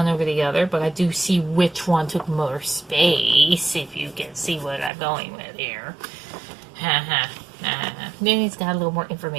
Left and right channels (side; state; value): left; drops out; at 4.9 s